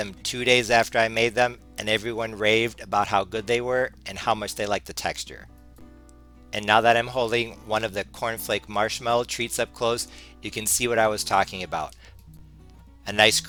2 days after I made them, and everyone raved about how good they were and how much they liked the texture. And now that I'm holding one of the cornflake marshmallow treats up close, you can see what I was talking about. A nice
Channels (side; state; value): both; identical; correlation 1.00